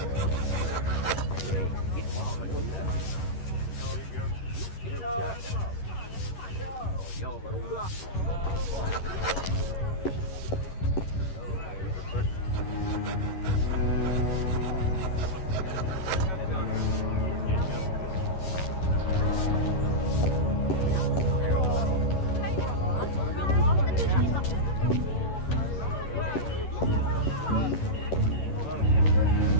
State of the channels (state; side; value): late; right; 11 ms